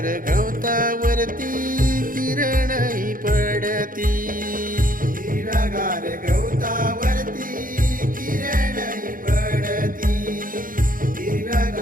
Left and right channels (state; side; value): late; left; 0.40 ms